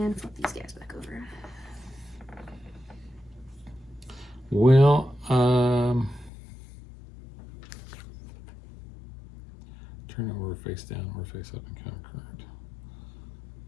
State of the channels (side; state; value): right; drops out; at 6.3 s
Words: flip these guys back over. Well, turn over face down or face up and count card.